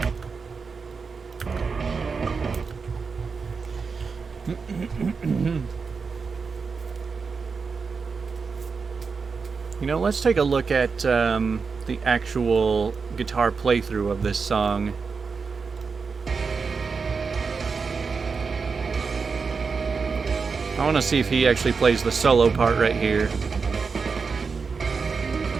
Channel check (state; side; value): quieter; left; 5.1 dB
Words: You know, let's take a look at the actual guitar playthrough of this song. I want to see if he actually plays the solo part right here.